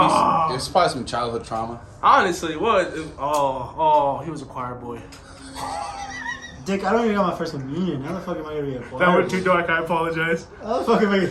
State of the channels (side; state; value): both; identical; correlation 1.00